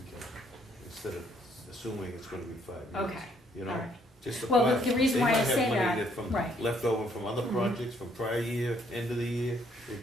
can, instead of assuming it's gonna be 5 years. Okay, You all know, right. just a Well, plan. the reason why I say They might have money that, from, right. left over from other Mhm. projects, from prior year, end of the year,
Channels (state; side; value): normal; both; correlation 0.67